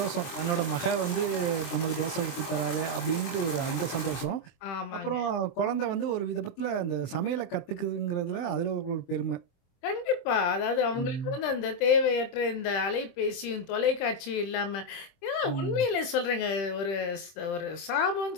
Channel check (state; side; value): late; right; 23 ms